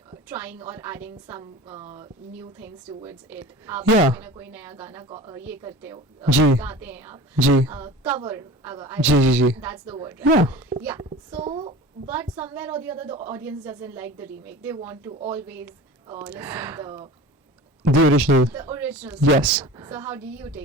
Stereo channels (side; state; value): both; normal; correlation 0.37